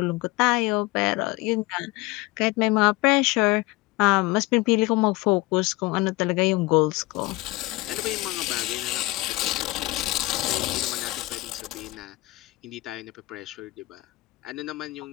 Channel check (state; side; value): quieter; right; 20.9 dB